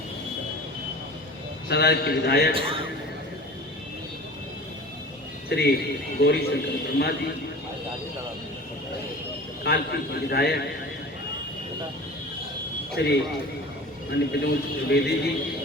सराय के विधायक श्री गौरी शंकर वर्मा जी, कालपी के विधायक श्री विनोद त्रिवेदी जी,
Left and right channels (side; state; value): both; normal; correlation 0.39